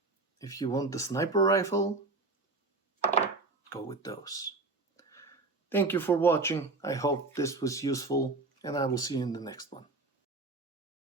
if you want the sniper rifle, go with those. Thank you for watching. I hope this was useful, and I will see you in the next one.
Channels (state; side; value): quieter; left; 3.4 dB